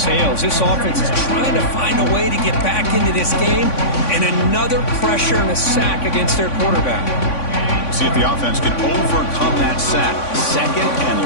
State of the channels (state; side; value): late; right; 3.5 ms